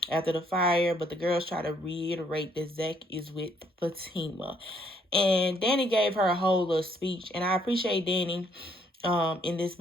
after the fire, but the girls try to reiterate that Zach is with Fatima. And Danny gave her a whole little speech, and I appreciate Danny in this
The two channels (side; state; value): both; normal; correlation 0.67